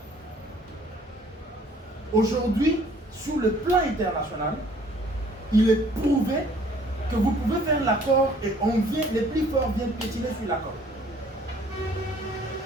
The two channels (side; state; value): both; normal; correlation 0.57